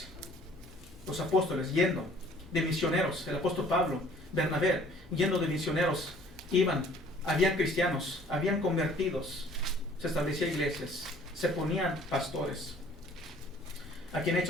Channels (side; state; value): both; normal; correlation 0.55